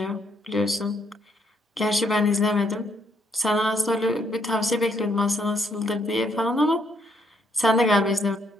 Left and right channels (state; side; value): normal; both; correlation 0.72